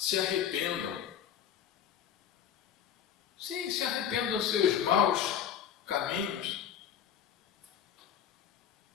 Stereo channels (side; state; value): right; quieter; 9.0 dB